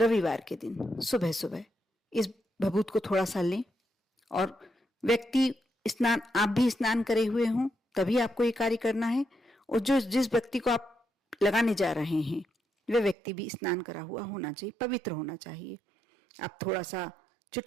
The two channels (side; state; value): left; drops out; at 13.2 s